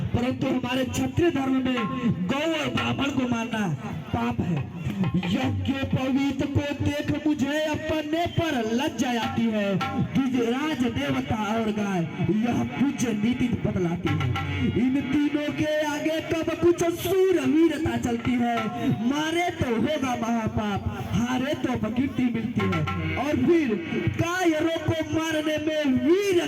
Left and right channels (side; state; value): both; identical; correlation 1.00